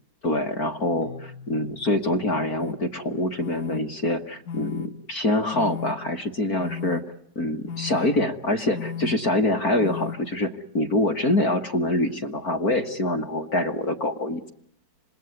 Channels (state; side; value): late; right; 4.5 ms